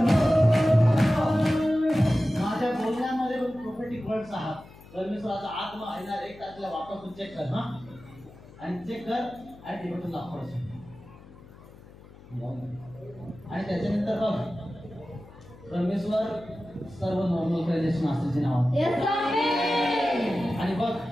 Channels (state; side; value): noise; left; hum, 21 dB below the sound